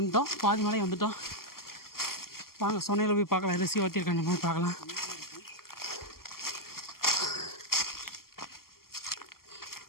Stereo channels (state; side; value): late; right; 0.92 ms